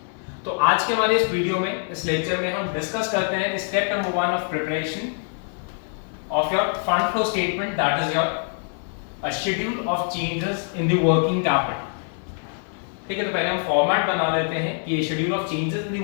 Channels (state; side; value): silent; right; 57 dB below the other